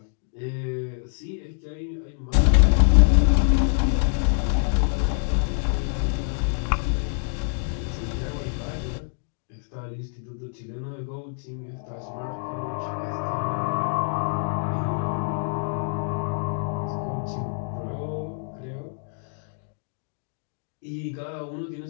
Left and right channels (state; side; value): silent; right; 57 dB below the other